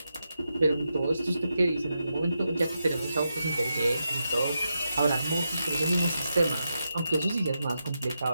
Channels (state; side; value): inverted; both; correlation -0.86